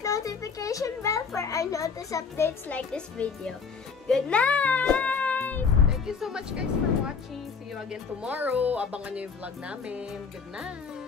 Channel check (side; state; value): right; quieter; 5.5 dB